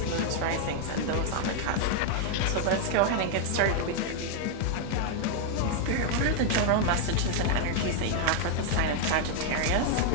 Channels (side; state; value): both; different; correlation 0.00